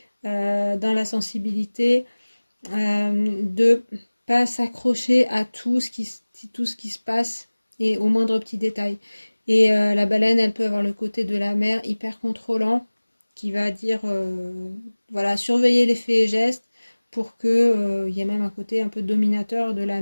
dans la sensibilité, de pas s'accrocher à tout ce qui se passe et au moindre petit détail. Et la baleine, elle peut avoir le côté de la mer hyper contrôlant, qui va dire, voilà, surveiller les faits et gestes pour que il y ait même un côté un peu dominateur de la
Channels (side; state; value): both; inverted; correlation -1.00